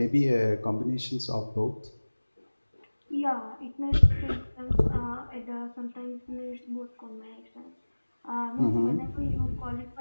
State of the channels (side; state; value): both; inverted; correlation -1.00